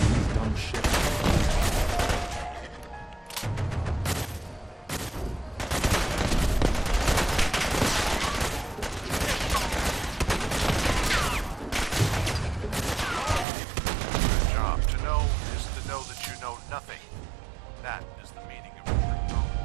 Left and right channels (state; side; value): drops out; left; at 13.5 s